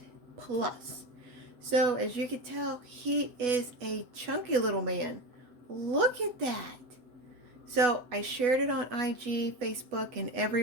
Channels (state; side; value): late; left; 8.1 ms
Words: Plus. So as you can tell, he is a chunky little man. Look at that. So I shared it on IG, Facebook, and